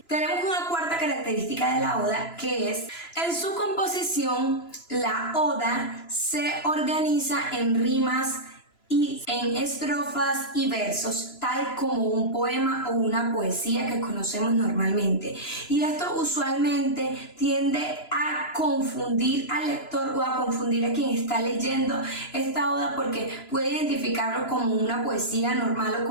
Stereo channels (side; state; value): right; late; 2.9 ms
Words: Tenemos una cuarta característica de la oda, que es en su composición. La oda se organiza en rimas y en estrofas y versos, tal como un poema o una poesía que conocemos normalmente. Y esto usualmente tiende a confundir al lector o a confundir a quien está leyendo esta oda, porque puede identificarlo como una poesía normal o